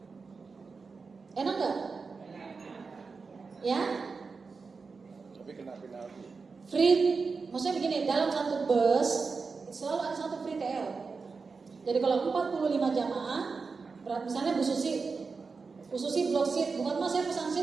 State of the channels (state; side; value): quieter; left; 4.7 dB